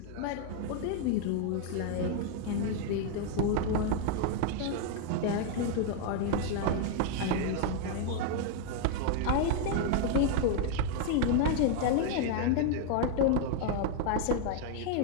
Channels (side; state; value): both; different; correlation 0.00